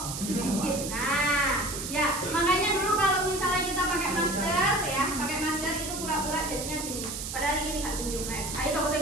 sedikit. Nah, ya, makanya dulu kalau misalnya kita pakai masker ya, pakai masker itu pura-pura jadinya gini. Padahal ini nggak senyum. Ayo sama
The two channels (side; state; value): right; noise; hiss, 6 dB below the sound